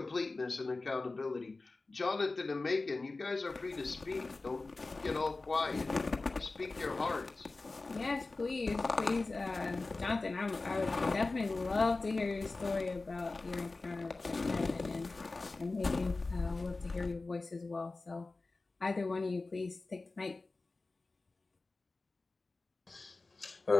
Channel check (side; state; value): right; quieter; 3.5 dB